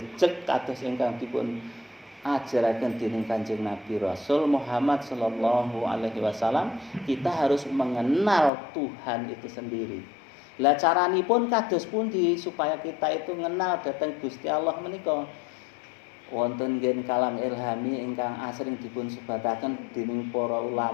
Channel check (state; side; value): drops out; right; at 8.5 s